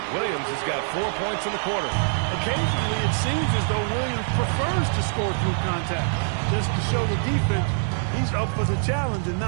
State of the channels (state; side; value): silent; left; 62 dB below the other